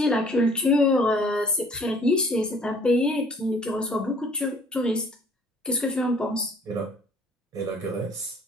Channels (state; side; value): normal; both; correlation 0.56